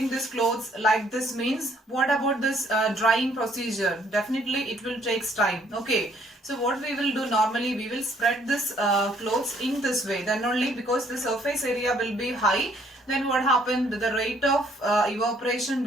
this clothes like this, means what about this drying procedure? Definitely it will take time. Okay. So what we will do normally, we will spread this clothes in this way. Then only, because the surface area will be high, then what happened? The rate of evaporation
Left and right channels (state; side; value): normal; both; correlation 0.64